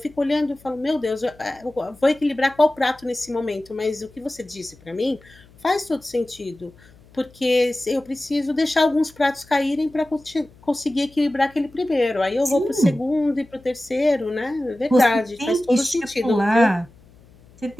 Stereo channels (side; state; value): left; noise; hum, 26 dB below the sound